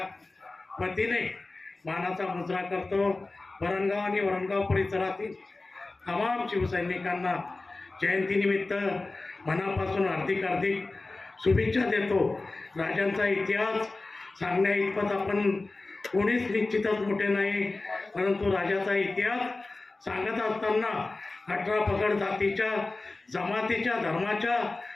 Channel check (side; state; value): right; quieter; 3.3 dB